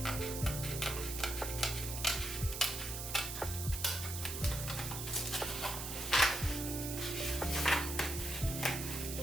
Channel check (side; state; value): right; noise; hiss, 6 dB below the sound